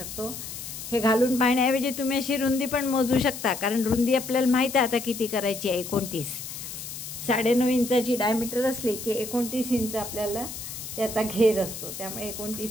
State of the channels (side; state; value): left; noise; hiss, 9 dB below the sound